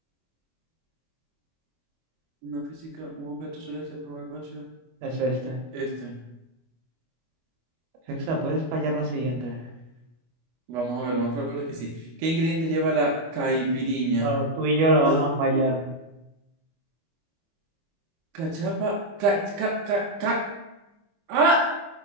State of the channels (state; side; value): late; left; 25 ms